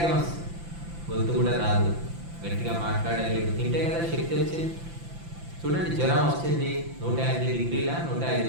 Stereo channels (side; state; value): left; late; 5.9 ms